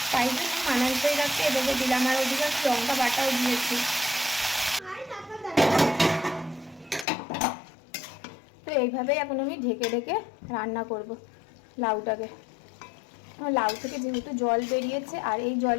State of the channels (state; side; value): drops out; right; at 7.1 s